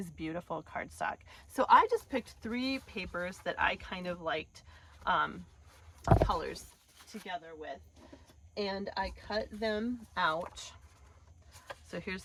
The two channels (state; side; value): identical; both; correlation 1.00